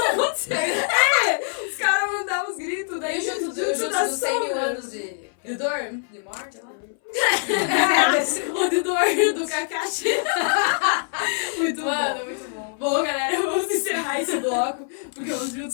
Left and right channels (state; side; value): silent; right; 60 dB below the other